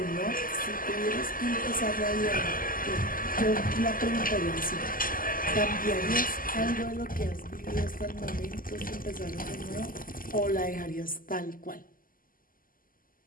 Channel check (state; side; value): late; right; 0.41 ms